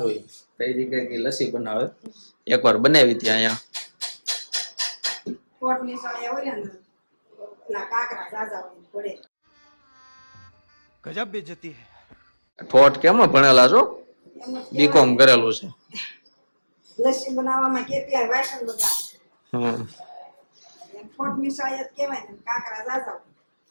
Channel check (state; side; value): inverted; both; correlation -1.00